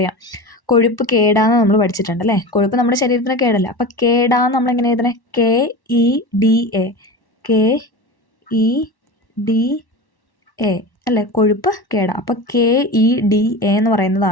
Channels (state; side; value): late; right; 1.1 ms